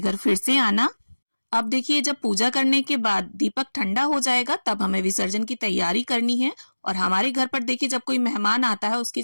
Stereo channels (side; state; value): both; inverted; correlation -1.00